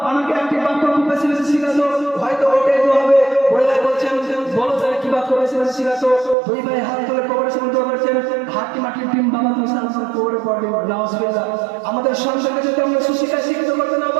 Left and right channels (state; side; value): drops out; left; at 6.4 s